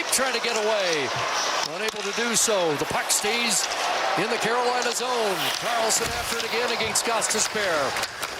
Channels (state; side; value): identical; both; correlation 1.00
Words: trying to get away. Unable to do so. The puck stays in the Carolina zone. Karlsson after it again against Gostisbehere.